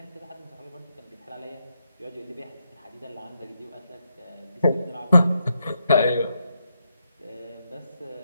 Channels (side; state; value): both; inverted; correlation -0.81